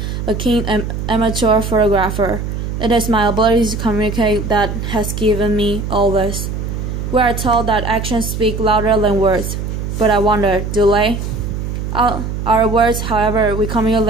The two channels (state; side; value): noise; right; hum, 4 dB below the sound